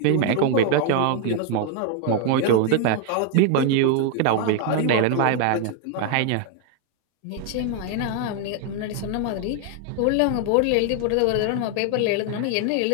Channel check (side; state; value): both; different; correlation 0.00